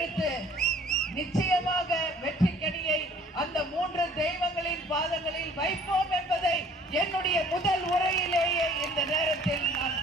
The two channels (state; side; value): normal; both; correlation 0.54